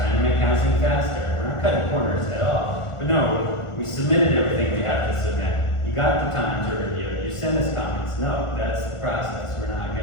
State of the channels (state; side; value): late; right; 1.4 ms